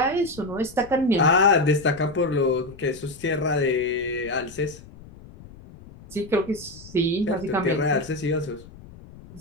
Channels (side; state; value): left; noise; rumble, 19 dB below the sound